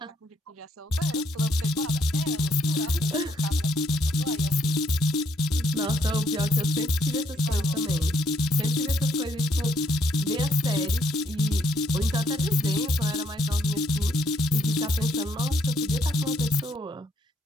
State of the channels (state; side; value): normal; both; correlation 0.71